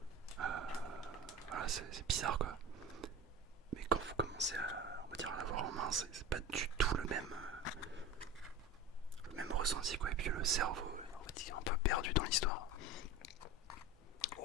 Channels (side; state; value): both; normal; correlation 0.31